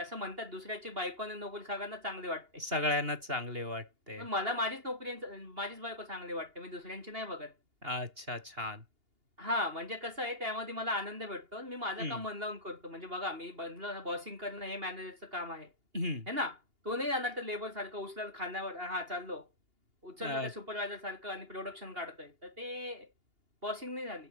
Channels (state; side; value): late; left; 2.8 ms